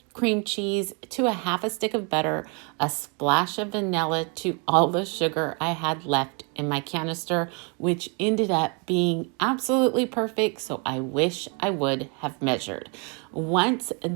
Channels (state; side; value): quieter; left; 34.5 dB